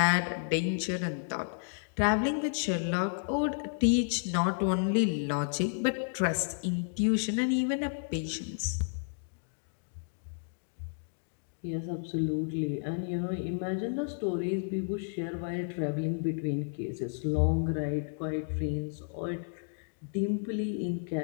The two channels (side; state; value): right; silent; digital silence